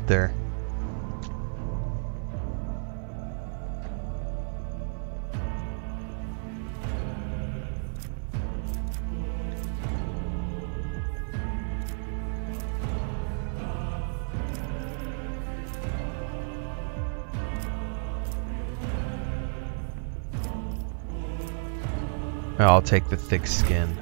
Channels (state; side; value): silent; left; 57 dB below the other